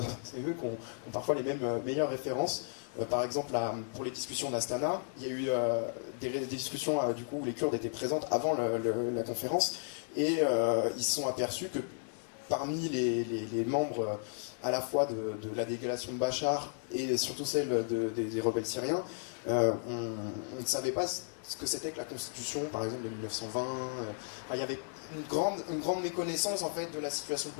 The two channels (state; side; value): silent; right; digital silence